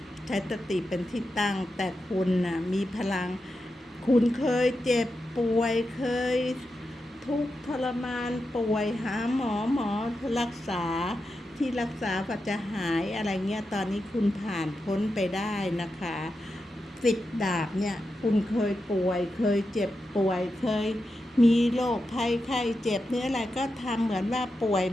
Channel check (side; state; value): both; normal; correlation 0.89